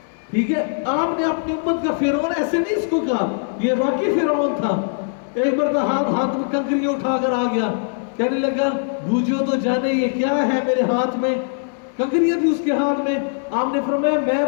ٹھیک ہے، آپ نے اپنی امت کا فرعون ایسے نہیں اس کو کہا، یہ واقعی فرعون تھا. ایک بار تو ہاتھ میں کنکریاں اٹھا کر آ گیا، کہنے لگا بوجھو تو جانے یہ کیا ہے میرے ہاتھ میں. کنکریاں تھی اس کے ہاتھ میں. آپ نے فرمایا میں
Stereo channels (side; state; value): right; silent; digital silence